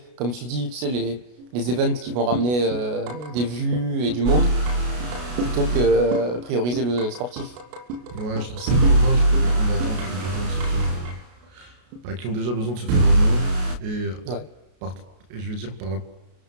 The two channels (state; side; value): late; left; 33 ms